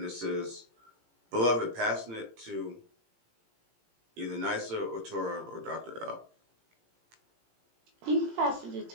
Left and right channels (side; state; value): left; late; 17 ms